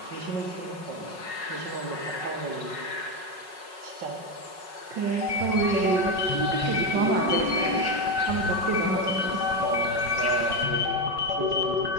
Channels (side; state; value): left; late; 5.4 ms